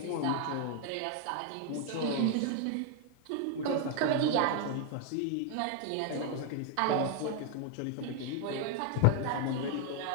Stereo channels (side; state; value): both; different; correlation 0.00